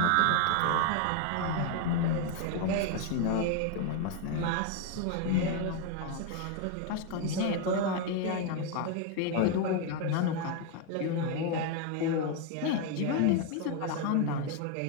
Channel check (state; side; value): different; both; correlation 0.01